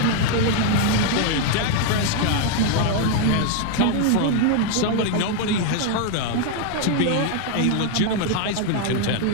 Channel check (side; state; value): both; different; correlation 0.00